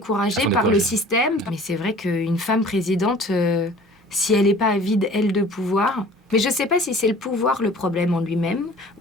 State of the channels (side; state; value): both; normal; correlation 0.47